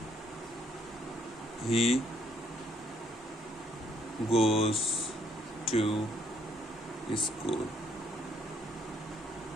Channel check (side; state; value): both; normal; correlation 0.68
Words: হি গোজ টু স্কুল।